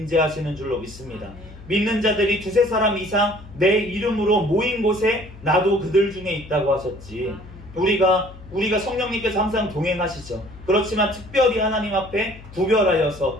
줄로 믿습니다. 믿는 자들이 두세 사람 이상 내 이름으로 모인 곳에 나도 그들 중에 있다고 하셨지. 우리가 성령님께서 항상 동행하시죠. 그렇지만 특별히 하나님 앞에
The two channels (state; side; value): noise; left; hum, 18 dB below the sound